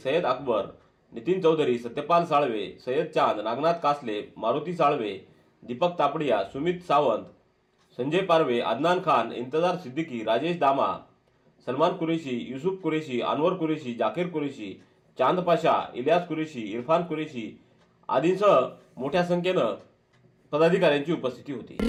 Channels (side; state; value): both; identical; correlation 1.00